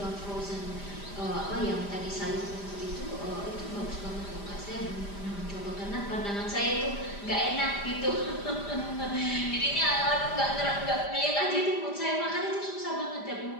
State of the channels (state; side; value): late; right; 5.0 ms